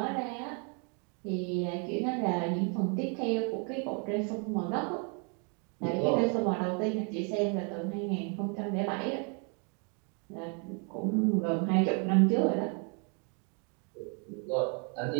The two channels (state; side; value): quieter; left; 37.3 dB